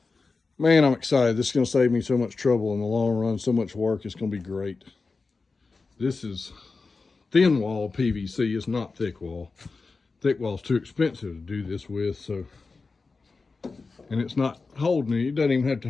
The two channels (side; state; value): right; quieter; 4.1 dB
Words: Man, I'm excited. This is going to save me so much trouble in the long run, so much work. It's going to be great. This is thin wall PVC. It's not thick wall. Thick wall is too expensive to do this with, so and it's not holding it. It doesn't even have to